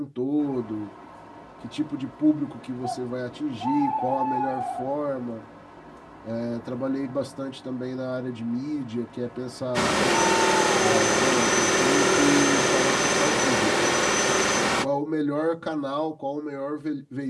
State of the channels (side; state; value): both; identical; correlation 1.00